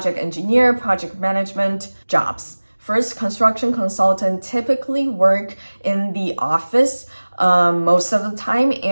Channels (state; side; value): inverted; both; correlation -1.00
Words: engineer, project management jobs. First, construction consultant typically work in the office most of the time,